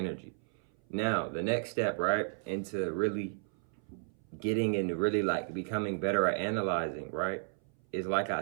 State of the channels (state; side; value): silent; left; 55 dB below the other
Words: Now, the next step, right, into really getting into really like becoming better at analyzing, right, is like I